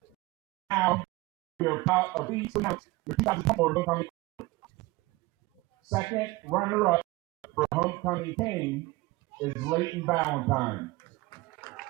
Now, we are proud of these to announce your 2024 homecoming. Second runner-up for homecoming king is Leighton Valentine.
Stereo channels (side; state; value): left; quieter; 21.3 dB